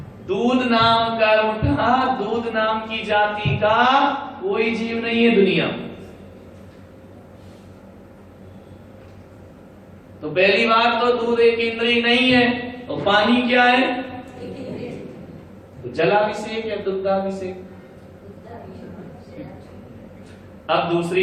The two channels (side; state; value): both; identical; correlation 1.00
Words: दूध नाम कर्म का, दूध नाम की जाति का कोई जीव नहीं है दुनिया। तो पहली बात तो दूध एक इंद्रिय नहीं है। और पानी क्या है? तो जलाभिषेक या दुग्धाभिषेक? अब